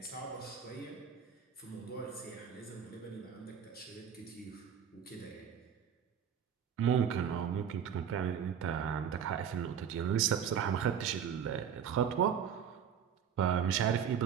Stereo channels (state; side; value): quieter; left; 8.1 dB